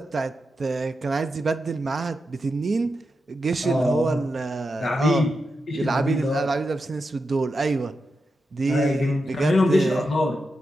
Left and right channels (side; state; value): both; normal; correlation 0.88